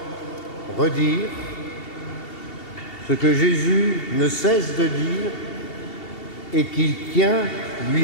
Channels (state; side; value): late; right; 2.7 ms